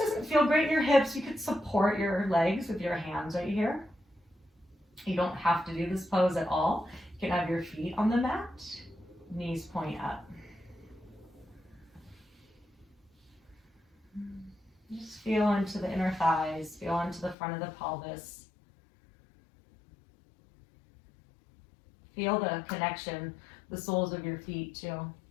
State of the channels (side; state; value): right; drops out; at 17.4 s